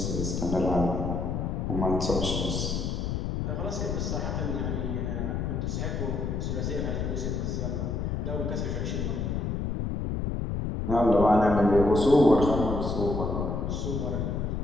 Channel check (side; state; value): left; noise; rumble, 1 dB below the sound